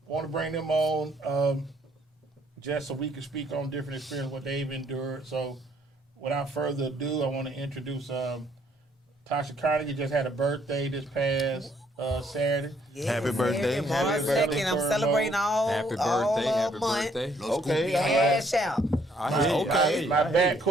want to bring them on just so we can speak on different experiences, what they've endured. So without further ado, I want to introduce Tasha Carnegie. Just had a birthday this past Saturday. Yes, Happy birthday. March Happy 2nd. birthday, I'm Turbo. celebrating all Happy all birthday, happy month. birthday. Okay. Cash out. I hear you, I hear you, My I hear you.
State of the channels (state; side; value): normal; both; correlation 0.67